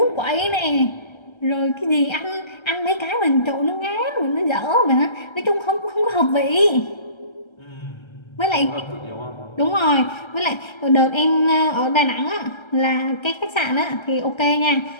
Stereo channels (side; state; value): right; late; 1.3 ms